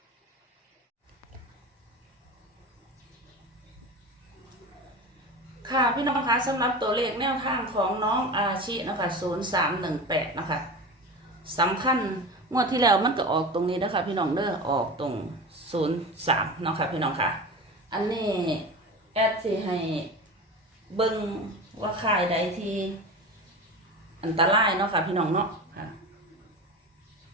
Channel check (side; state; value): both; normal; correlation 0.30